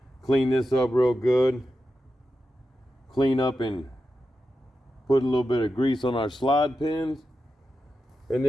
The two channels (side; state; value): both; normal; correlation 0.90